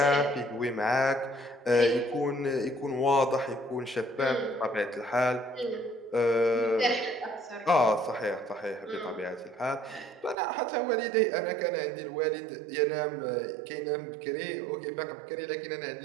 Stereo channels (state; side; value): drops out; left; at 10.4 s